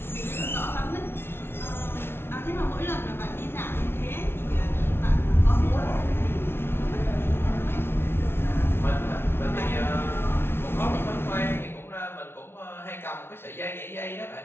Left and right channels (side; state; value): right; late; 0.11 ms